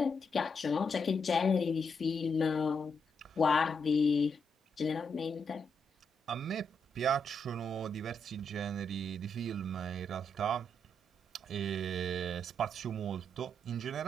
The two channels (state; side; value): normal; both; correlation 0.80